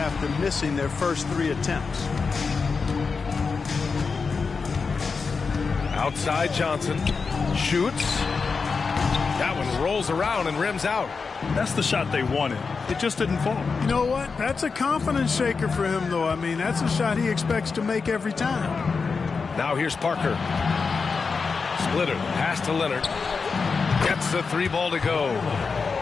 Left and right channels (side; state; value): right; quieter; 4.9 dB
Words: missing their first 3 attempts. Outside Johnson. Shoots. That one rolls around and rims out. That's the shot they wanted. It just didn't fall. You know what? That's a confidence shaker for him, though. I mean, that's a shot he expects to make every time. Now here's Parker. Splitter. Pass to Leonard. Gets the 3 ball to go.